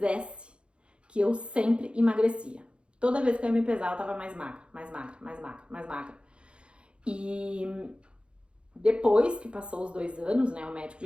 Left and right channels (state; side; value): late; left; 0.057 ms